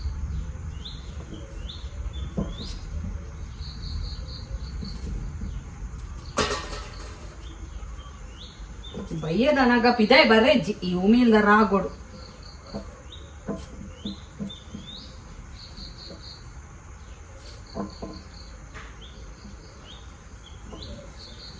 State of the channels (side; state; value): both; identical; correlation 1.00